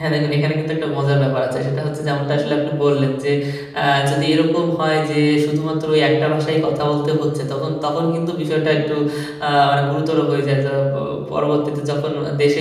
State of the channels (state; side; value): identical; both; correlation 1.00